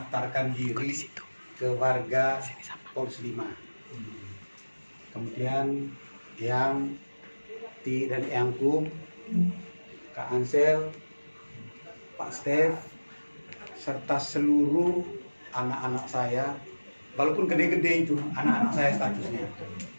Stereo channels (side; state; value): both; inverted; correlation -1.00